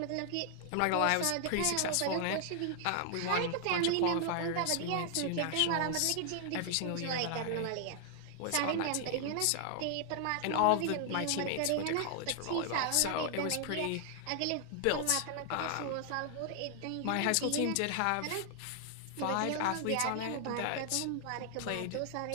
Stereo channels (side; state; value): both; different; correlation 0.00